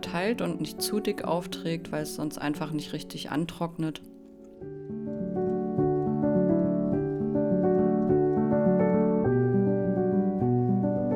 und nicht zu dick aufträgt, weil es sonst einfach nicht richtig antrocknet.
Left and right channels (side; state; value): both; identical; correlation 1.00